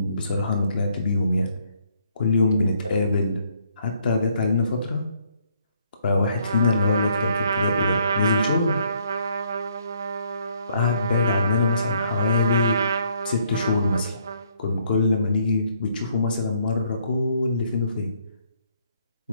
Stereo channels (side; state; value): both; inverted; correlation -0.68